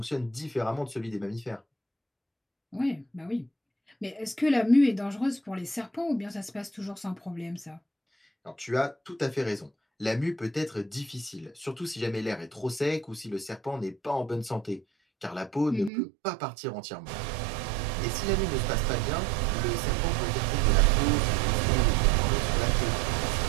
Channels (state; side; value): drops out; left; at 15.9 s